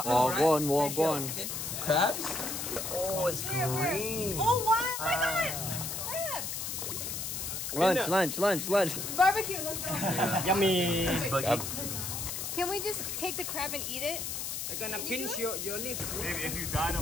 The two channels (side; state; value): left; noise; hiss, 4 dB below the sound